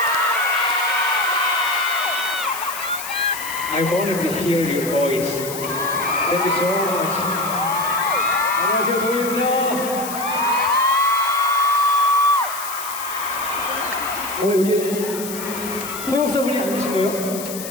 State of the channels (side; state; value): left; noise; hiss, 9 dB below the sound